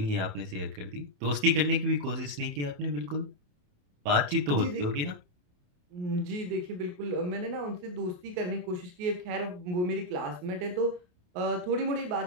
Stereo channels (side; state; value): left; late; 28 ms